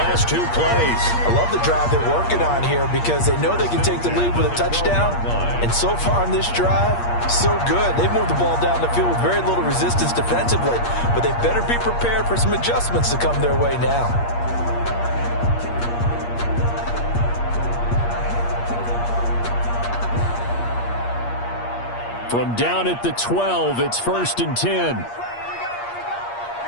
2 plays. I love the drive they're working on here because they know they can take the lead with a touchdown. And so far on this drive, so good. They've moved the ball down the field with very little resistance defensively. But they better be prepared for some adjustments to come their way now. From down at the 12, it's 1st and 10.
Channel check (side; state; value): right; late; 8.5 ms